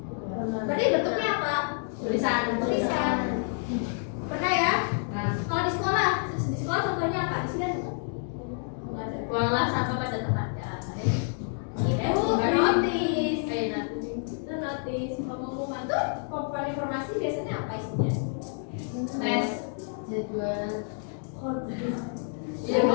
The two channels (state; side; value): silent; right; 59 dB below the other